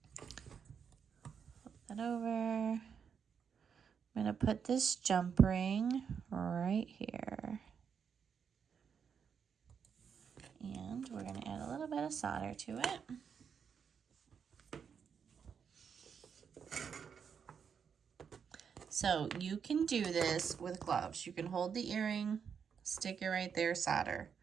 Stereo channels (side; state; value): left; quieter; 6.9 dB